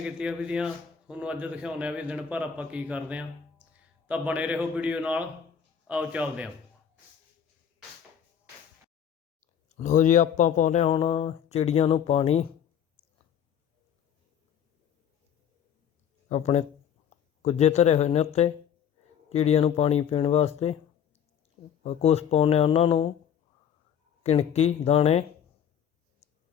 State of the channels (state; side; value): quieter; right; 8.5 dB